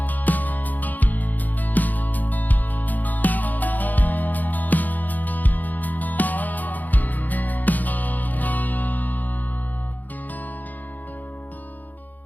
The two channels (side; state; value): right; late; 0.083 ms